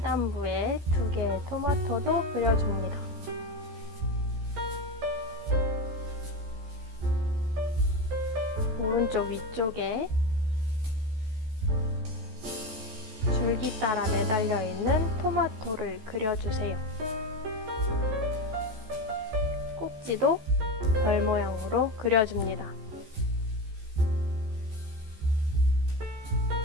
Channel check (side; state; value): left; late; 14 ms